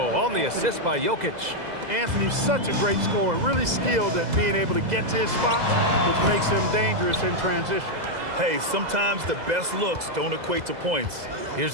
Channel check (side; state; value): left; late; 2.0 ms